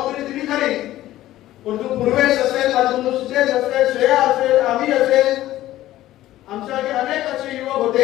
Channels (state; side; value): quieter; right; 14.7 dB